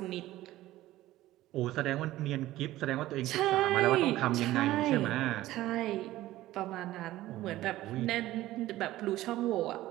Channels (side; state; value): left; quieter; 15.8 dB